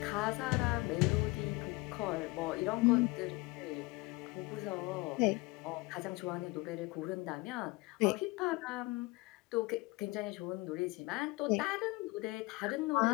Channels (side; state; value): right; quieter; 23.8 dB